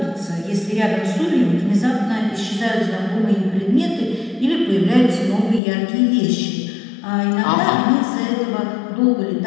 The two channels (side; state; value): right; drops out; at 5.6 s